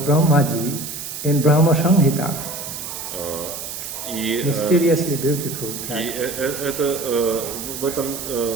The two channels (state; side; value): noise; right; hiss, 8 dB below the sound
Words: Brahmaji, in Brahma Samhita. Mysteriously beautiful. И это, в этом